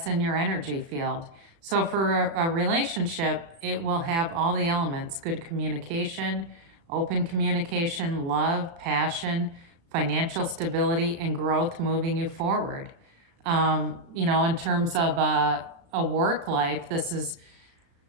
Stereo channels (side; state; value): left; late; 36 ms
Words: in your energy field. So for a relationship, it will have all the elements: good communication, open communication, love, passion, financial stability, and growth moving you forward. In terms of a work life, this is